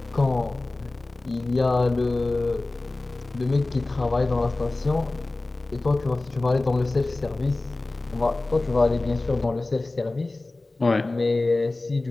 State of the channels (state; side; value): quieter; right; 3.1 dB